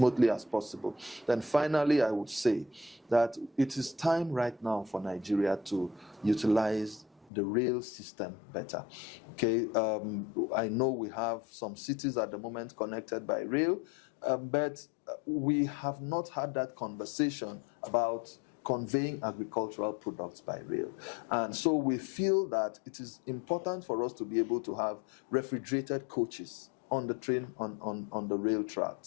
as possible. Then finally, I would say that it is time right now for Nigeria to utilize the rail system better. Okay, I know we have some cities at the moment connected by rail, but we have not had that conversation about conveying agricultural products by rail. And so we feel that it is important for us to be able to have refrigerated coaches on the train, on the rail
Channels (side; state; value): right; drops out; at 7.3 s